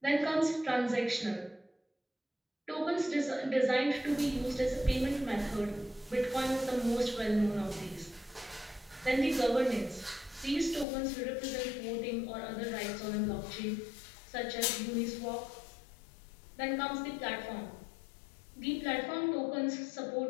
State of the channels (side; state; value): right; drops out; at 10.9 s